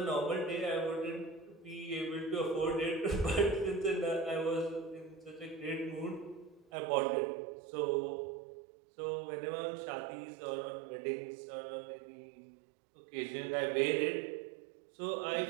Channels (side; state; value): left; drops out; at 6.7 s